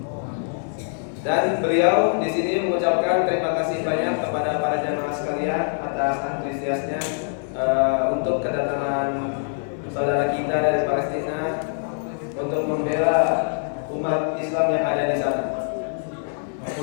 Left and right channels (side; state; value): right; silent; 56 dB below the other